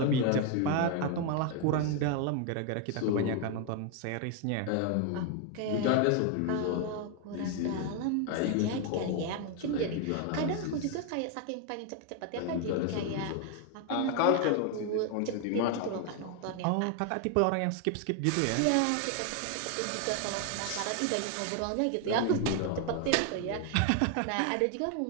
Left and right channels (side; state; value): both; different; correlation 0.01